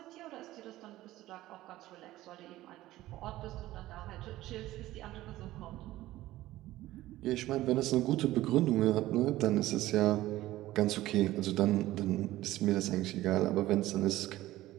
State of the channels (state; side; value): quieter; left; 16.0 dB